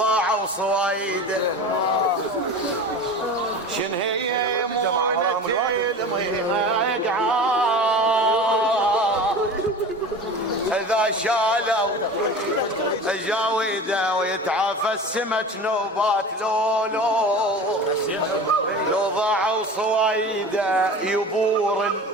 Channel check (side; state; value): both; normal; correlation 0.34